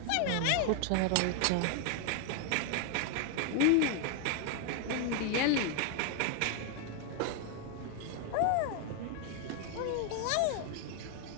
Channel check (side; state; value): both; different; correlation 0.00